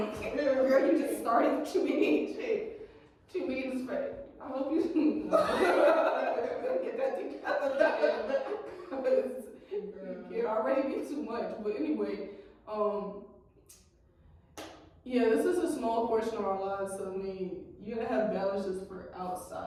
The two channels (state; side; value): identical; both; correlation 1.00